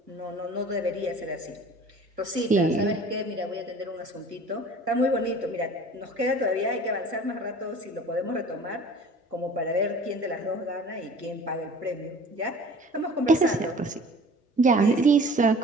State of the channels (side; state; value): both; normal; correlation 0.45